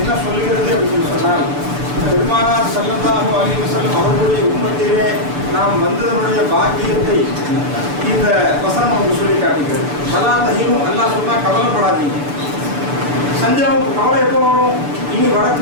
சொல்கிறது அப்படின்னு சொன்னால், பெருமானார் ஸல்லல்லாஹு அலைஹி வஸல்லம் அவர்களுடைய உம்மத்திலே நாம் வந்ததனுடைய பாக்கியத்தை இந்த வசனம் நமக்கு சொல்லி காட்டுகிறது. வலா தஹீனு, அல்லாஹ் சொன்னா கவலைப்படாதீங்க. சஞ்சலம், கவலை எப்போ வரும்? இனி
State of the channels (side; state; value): left; late; 6.9 ms